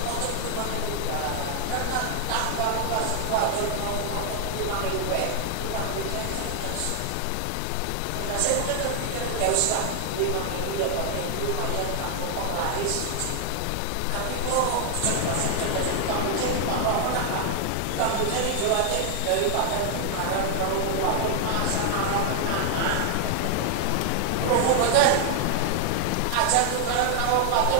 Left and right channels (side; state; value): both; different; correlation 0.00